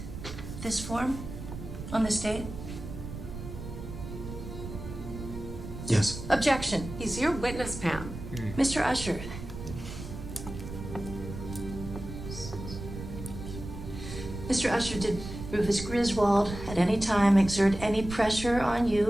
this form on this date? Yes. Objection. He's your witness, Pam. Mr. Usher. Mr. Usher, did Rufus Griswold at any time exert any pressure on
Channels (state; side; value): noise; right; rumble, 9 dB below the sound